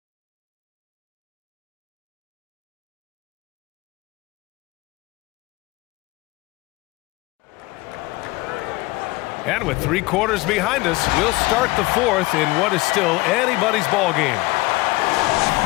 And with 3 quarters behind us, we'll start the fourth in what is still anybody's ball game.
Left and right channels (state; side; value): quieter; right; 21.5 dB